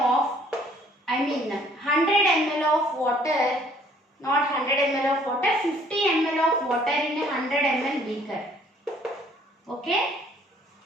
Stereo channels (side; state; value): both; normal; correlation 0.59